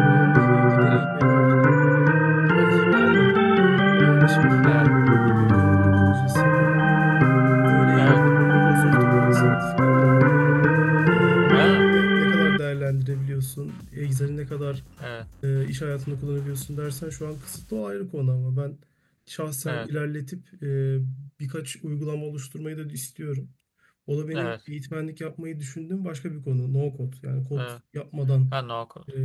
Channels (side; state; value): both; identical; correlation 1.00